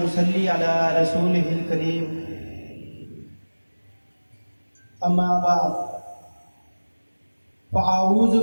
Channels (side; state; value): both; inverted; correlation -1.00